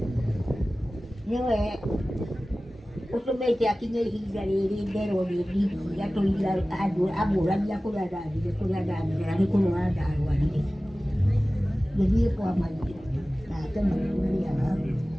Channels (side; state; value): both; normal; correlation 0.97